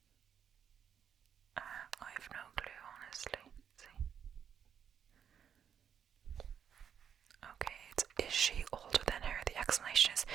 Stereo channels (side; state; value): left; quieter; 8.1 dB